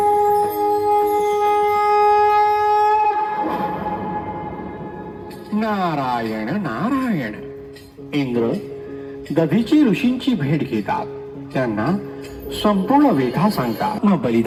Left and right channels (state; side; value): identical; both; correlation 1.00